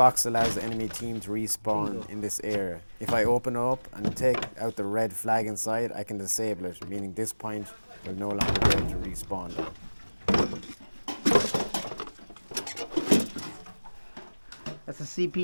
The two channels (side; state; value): both; inverted; correlation -1.00